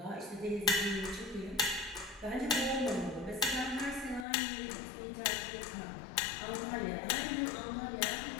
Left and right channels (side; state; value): right; drops out; at 4.2 s